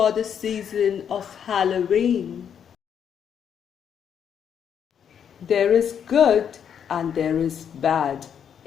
the season of Halloween. There is good and there is bad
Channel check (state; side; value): quieter; right; 8.2 dB